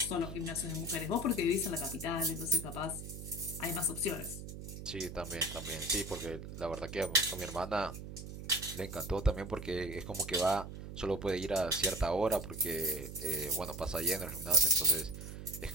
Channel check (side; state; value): right; noise; hum, 10 dB below the sound